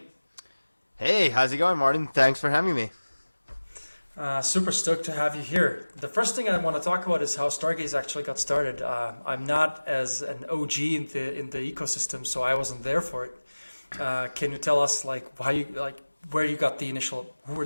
Hey, how's it going, Martin? Thanks for having me. Super stoked to have you here. The first thing I want to talk about is how Stargaze actually got started. I'm not as an OG in the ecosystem, so I wasn't there for it. Can you tell us where you got the initial, who were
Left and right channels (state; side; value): inverted; both; correlation -1.00